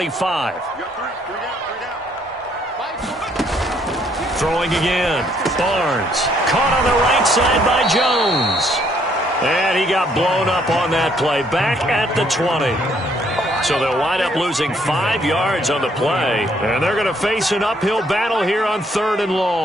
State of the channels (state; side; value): normal; both; correlation 0.67